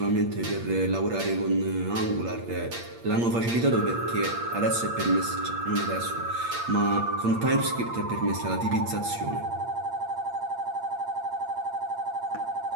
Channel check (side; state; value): left; late; 8.6 ms